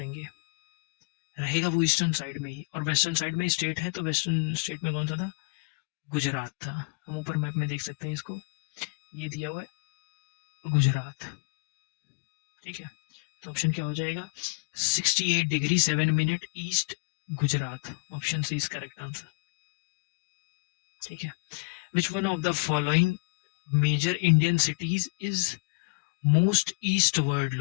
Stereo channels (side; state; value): right; quieter; 30.8 dB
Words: रहेगा वो ईस्टर्न साइड में ही। और वेस्टर्न साइड में स्टेट है, तो वेस्टर्न स्टेट में कौन सा था, गुजरात था। हम ऊपर मैप में देख सकते हैं इसको, ये दिया हुआ है गुजरात। ठीक है, तो ऑप्शन क्या हो जाएगा, 68 degree 7 minute east Gujarat, option C is correct answer. ठीक है, which one of the following major Indian cities is most eastward